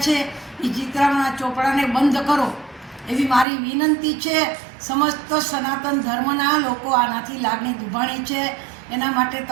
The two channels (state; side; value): drops out; left; at 3.5 s